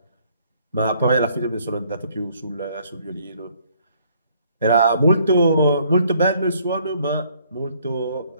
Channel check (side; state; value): both; inverted; correlation -0.64